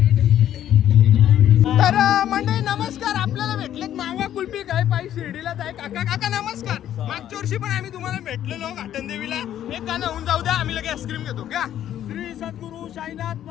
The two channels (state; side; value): quieter; right; 11.2 dB